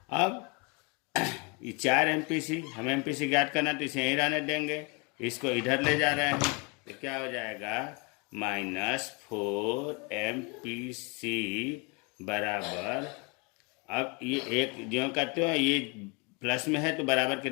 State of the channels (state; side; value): quieter; right; 31.1 dB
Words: अब ये 4 एमपीसी, हम एमपीसी ज्ञात करना तो इसे यहीं रहने देंगे, इसको इधर ले जा रहे हैं, तो क्या हो जाएगा, -4 एमपीसी बराबर, अब ये एक जो करते हो ये प्लस में है तो बराबर